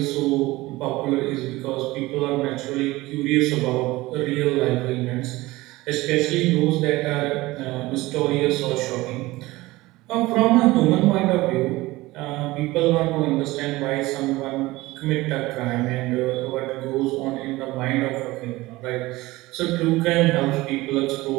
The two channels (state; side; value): quieter; left; 19.6 dB